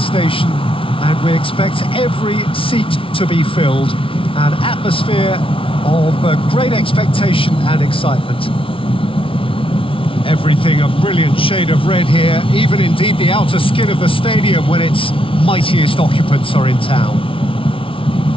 and we expect every seat to be filled. An atmosphere of great expectation and excitement. Everything a brilliant shade of red here, even indeed the outer skin of the stadium when its mightiest occupants are in town.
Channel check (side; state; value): right; late; 0.25 ms